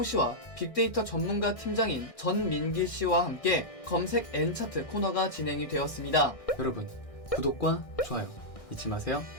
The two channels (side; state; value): right; late; 1.6 ms